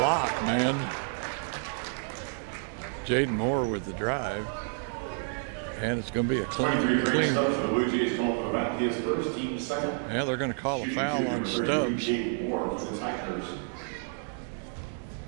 man. Jaden Moore with the drive. And it's going to be a clean. The Bluejays calling about his first team second. Yeah, they're going to call a foul on Stubbs.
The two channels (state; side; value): silent; left; 58 dB below the other